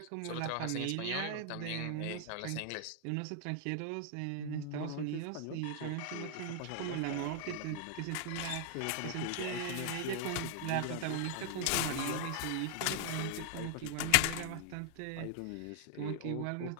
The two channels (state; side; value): different; both; correlation 0.00